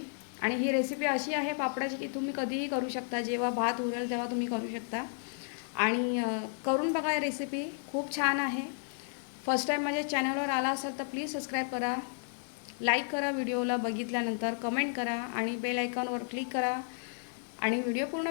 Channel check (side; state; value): right; silent; 56 dB below the other